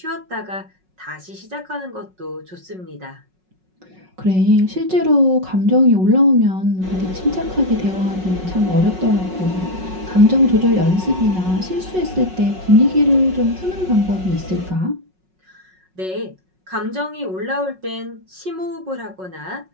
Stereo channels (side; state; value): left; late; 5.4 ms